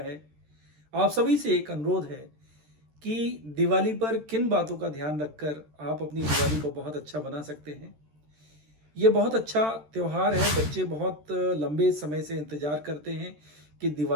आप सभी से एक अनुरोध है कि दिवाली पर किन बातों का ध्यान रखकर आप अपनी दिवाली को बहुत अच्छा बना सकते हैं। ये बहुत अच्छा त्योहार है। बच्चे बहुत लंबे समय से इंतज़ार करते हैं कि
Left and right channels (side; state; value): left; late; 13 ms